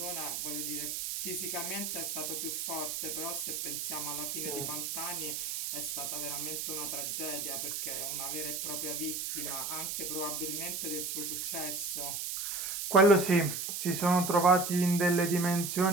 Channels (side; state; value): right; noise; hiss, 3 dB below the sound